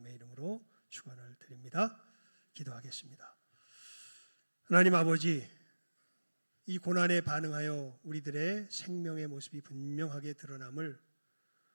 이름으로 축원을 드립니다. 기도하겠습니다. 하나님 아버지, 이 고난에 반응하여 우리들의 생명의 모습이 분명하게 드러남을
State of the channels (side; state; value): both; inverted; correlation -1.00